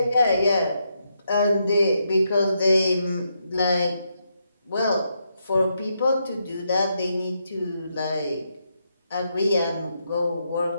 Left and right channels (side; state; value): both; inverted; correlation -0.80